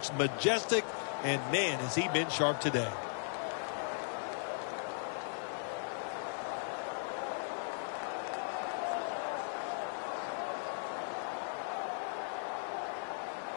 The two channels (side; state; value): right; silent; digital silence